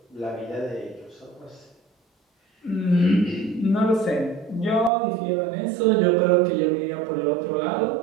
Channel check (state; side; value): drops out; left; at 4.9 s